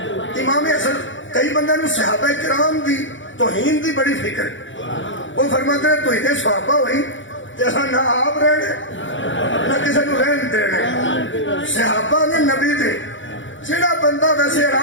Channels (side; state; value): right; late; 0.55 ms